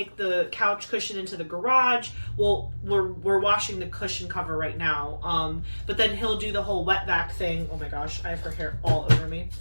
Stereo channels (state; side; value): inverted; both; correlation -1.00